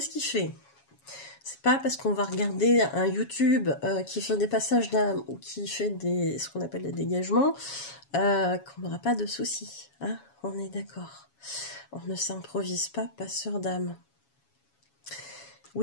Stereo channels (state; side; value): late; right; 7.2 ms